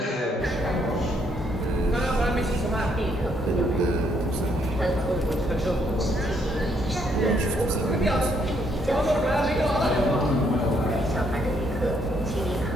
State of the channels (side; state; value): both; normal; correlation 0.71